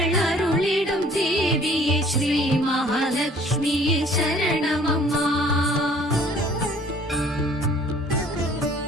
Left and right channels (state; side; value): normal; both; correlation 0.55